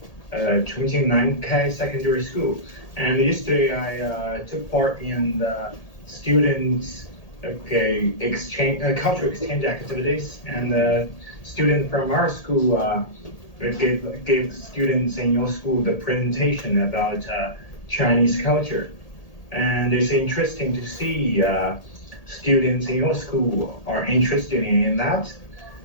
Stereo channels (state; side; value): late; right; 1.8 ms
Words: Chongqing Nankai Secondary School, and yesterday I took part in the students cultural exchange activities, and student from our school gave students in your school the presentation about Chinese culture, and it's interesting to see students in your school are interested in that.